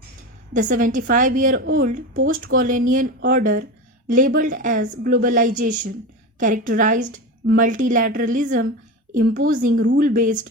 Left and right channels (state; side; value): normal; both; correlation 0.23